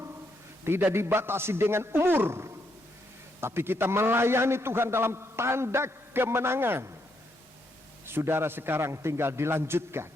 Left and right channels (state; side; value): normal; both; correlation 0.77